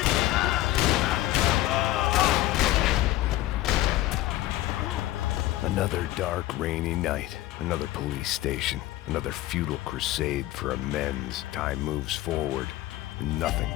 Another dark, rainy night. Another police station. Another futile crusade for amends. Time moves forward, and nothing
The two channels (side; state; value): right; quieter; 15.9 dB